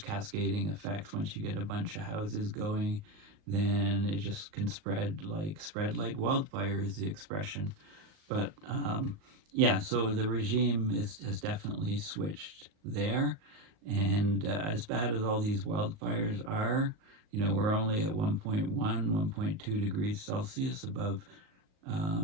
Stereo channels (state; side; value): late; left; 38 ms